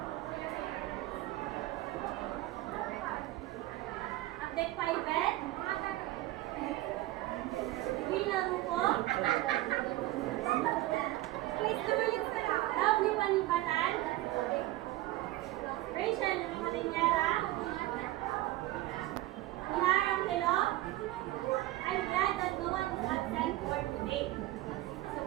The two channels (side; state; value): left; quieter; 16.9 dB